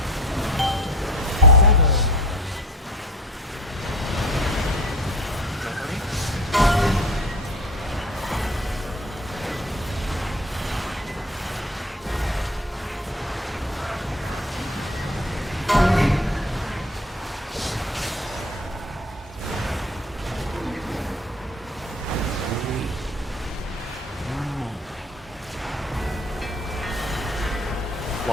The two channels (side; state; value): both; normal; correlation 0.41